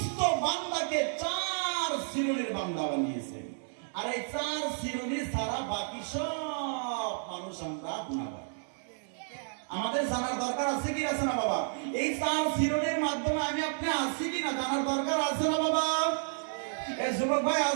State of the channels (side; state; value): left; silent; digital silence